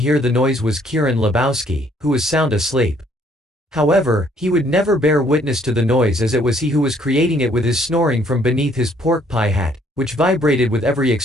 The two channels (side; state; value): both; normal; correlation 0.64